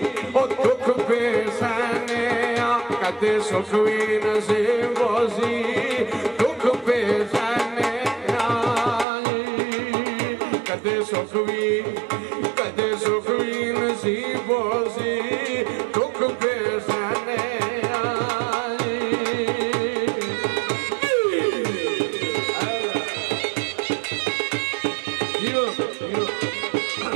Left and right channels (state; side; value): drops out; left; at 9.1 s